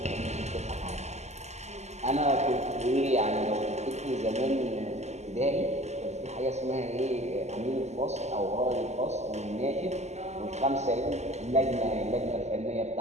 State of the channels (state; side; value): late; left; 0.33 ms